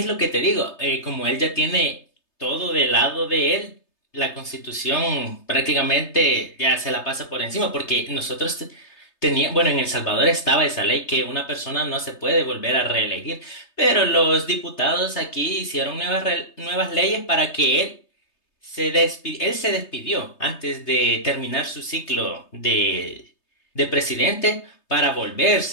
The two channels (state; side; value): late; right; 3.3 ms